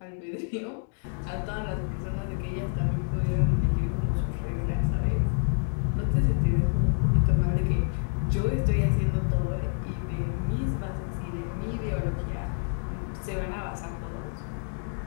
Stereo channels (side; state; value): right; silent; digital silence